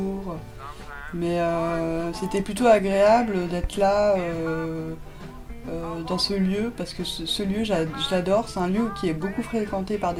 Mais c'était plutôt agréable d'être là dans ce lieu, parce que ce lieu, je l'adore. C'est un lieu qui est beaucoup fréquenté par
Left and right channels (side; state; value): both; identical; correlation 1.00